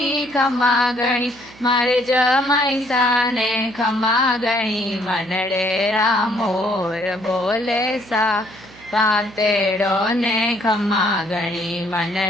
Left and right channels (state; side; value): noise; right; hum, 23 dB below the sound